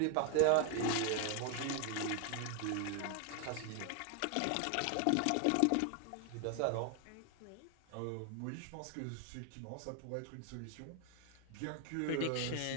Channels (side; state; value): both; different; correlation 0.01